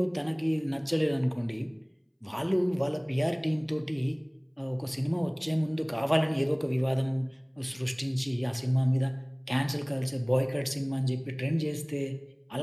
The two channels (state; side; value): identical; both; correlation 1.00